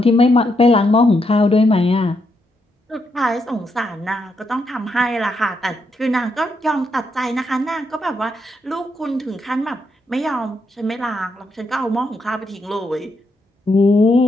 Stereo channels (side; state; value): both; normal; correlation 0.79